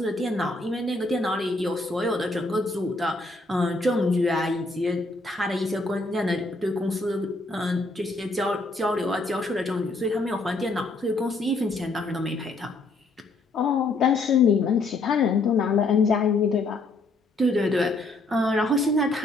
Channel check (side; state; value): right; quieter; 3.0 dB